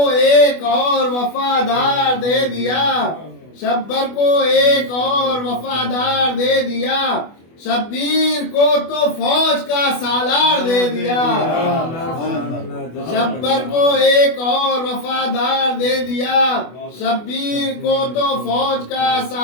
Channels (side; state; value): right; late; 24 ms